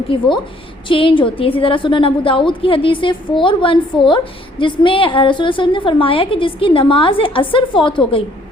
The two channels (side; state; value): both; normal; correlation 0.62